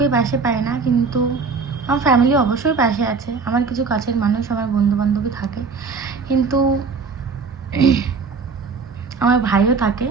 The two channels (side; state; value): left; quieter; 4.8 dB